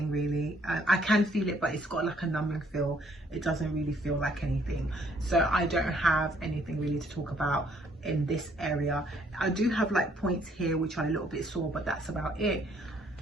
really. I can feel it, but it's got like a numbing feel. It doesn't really feel like anything. So I don't have anything really to talk about in this area. I do have like points here which are a little bit sore, but that's about it.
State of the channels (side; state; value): both; normal; correlation 0.65